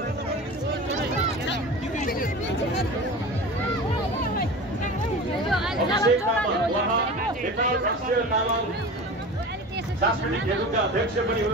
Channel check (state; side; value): normal; both; correlation 0.34